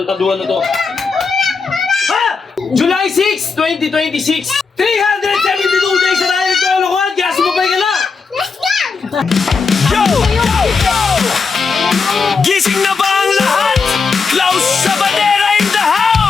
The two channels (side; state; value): right; quieter; 4.9 dB